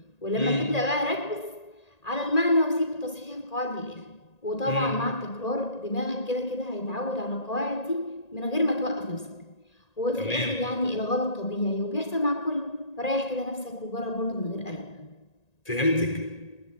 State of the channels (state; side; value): late; right; 1.8 ms